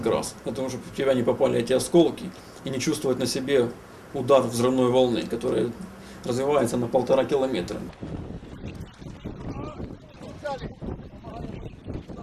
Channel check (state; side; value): identical; both; correlation 1.00